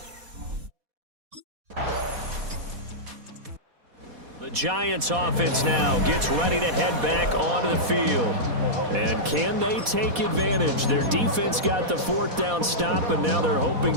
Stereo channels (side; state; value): left; late; 4.1 ms